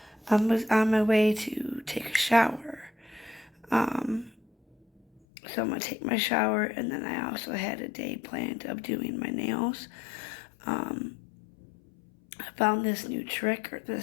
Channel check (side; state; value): right; drops out; at 5.2 s